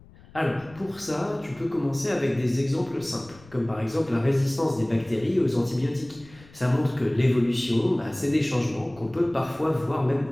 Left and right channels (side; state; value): left; noise; rumble, 23 dB below the sound